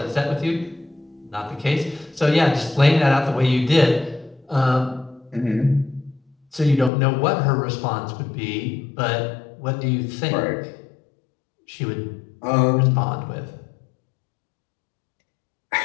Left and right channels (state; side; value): drops out; right; at 6.9 s